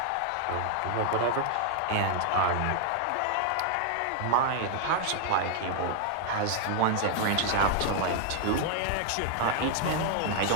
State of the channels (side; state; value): both; different; correlation 0.00